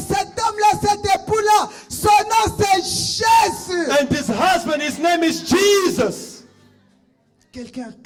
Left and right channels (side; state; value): both; identical; correlation 1.00